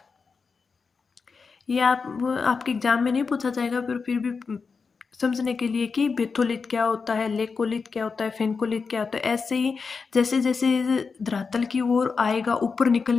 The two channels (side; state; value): right; quieter; 5.0 dB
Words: ये आपके एग्जाम में नहीं पूछा जाएगा, पर फिर भी समझने के लिए कि बेथोलिथ क्या होता है, लेकोलिथ क्या होता है, फेनकोलिथ क्या होता है। ऐसे ही जैसे जैसे धरातल की ओर आएगा, ऊपर